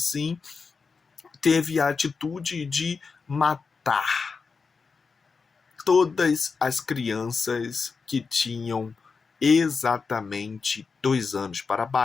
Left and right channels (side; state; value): right; quieter; 4.9 dB